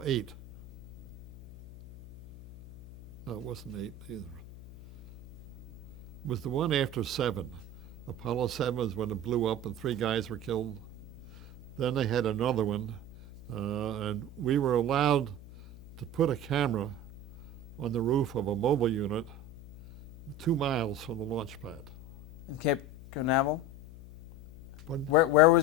8. No, it wasn't 8 either. It was the one after 7. Apollo 7 was when it blew up and 3 guys were killed. Then they had another one, and we were allowed to put a camera on the roof of a mobile unit 2 miles from the launch pad. In Cape Canaveral? Pardon? Where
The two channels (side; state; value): left; noise; hum, 16 dB below the sound